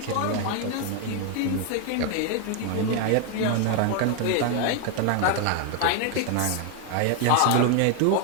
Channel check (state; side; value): different; both; correlation 0.01